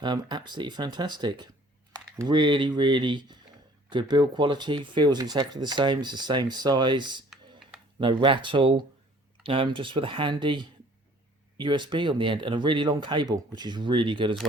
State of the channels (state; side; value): normal; both; correlation 0.54